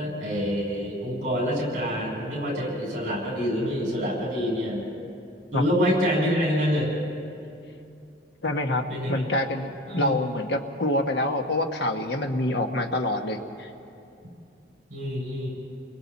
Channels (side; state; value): both; normal; correlation 0.37